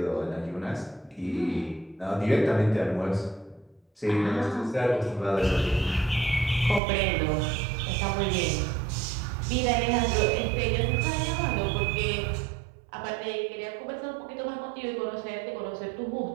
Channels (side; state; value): left; drops out; at 6.8 s